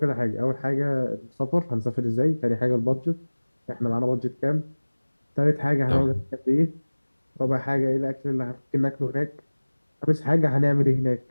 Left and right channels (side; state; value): both; inverted; correlation -1.00